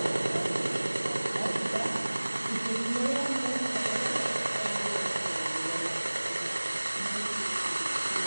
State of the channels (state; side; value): inverted; both; correlation -1.00